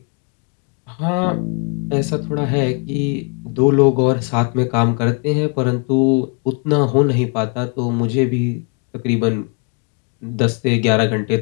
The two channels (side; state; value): right; quieter; 37.7 dB